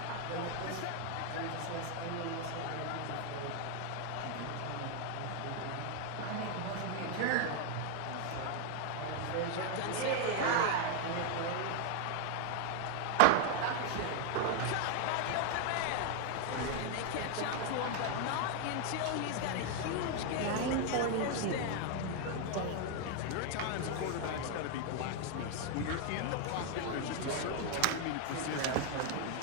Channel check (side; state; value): both; different; correlation 0.01